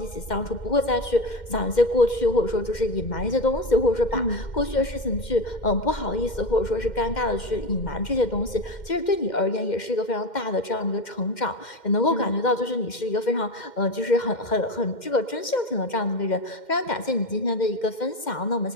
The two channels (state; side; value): late; right; 2.1 ms